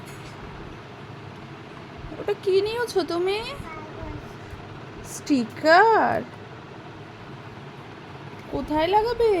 ওটা কি নিয়েছো তুমি? স্টিকার? কোথায় লাগাবে?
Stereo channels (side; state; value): both; identical; correlation 1.00